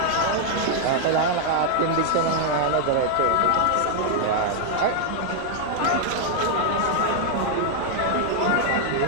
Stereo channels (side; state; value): both; different; correlation -0.01